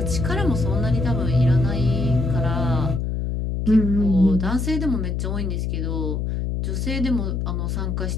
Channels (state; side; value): noise; left; hum, 1 dB below the sound